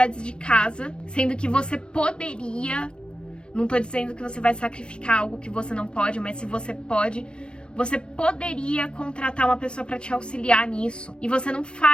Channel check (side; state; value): right; late; 0.056 ms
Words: de casa, sendo que você poderia, não tô dizendo que você vai sacrificar algo que você não pode, mas se você pode, você poderia contratar uma pessoa para te auxiliar nisso. E você não